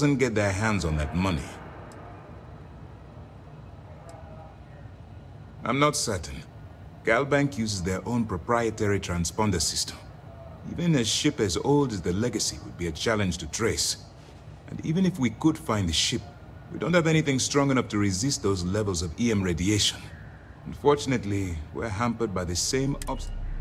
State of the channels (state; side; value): identical; both; correlation 1.00